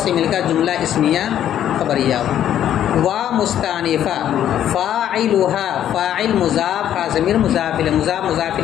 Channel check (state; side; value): quieter; right; 10.8 dB